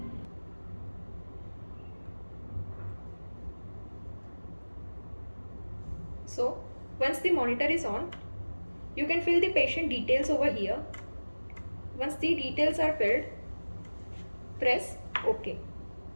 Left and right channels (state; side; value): inverted; both; correlation -1.00